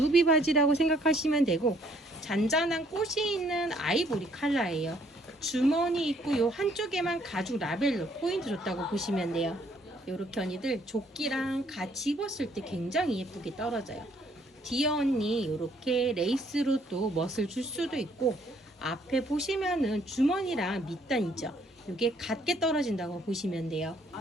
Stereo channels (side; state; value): both; normal; correlation 0.65